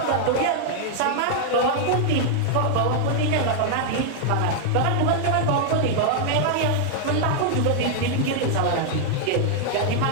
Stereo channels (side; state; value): both; different; correlation -0.01